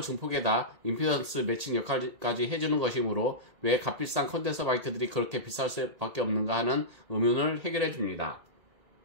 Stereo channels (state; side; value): late; left; 2.2 ms